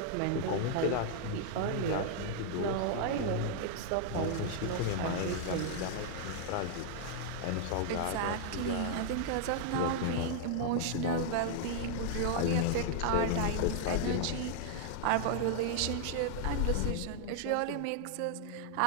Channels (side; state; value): both; different; correlation -0.01